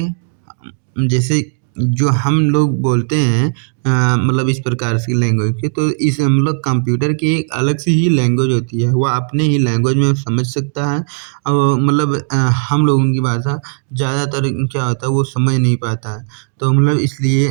जैसे जो हम लोग बोलते हैं मतलब इस प्रकार की लैंग्वेज की, तो इस मतलब कंप्यूटर की एक अलग सी ही लैंग्वेज होती है, वह अपने ही लैंग्वेज में समझ सकता है। और मतलब हम लोगों की भाषा ज़्यादातर क्या होता है वो समझ नहीं पाता है। तो मतलब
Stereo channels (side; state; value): left; silent; digital silence